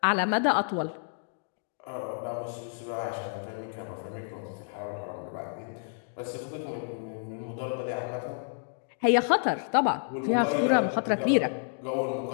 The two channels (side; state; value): right; silent; digital silence